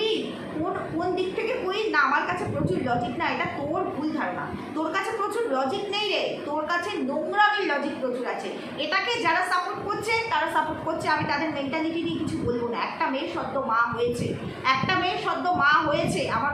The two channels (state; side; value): identical; both; correlation 1.00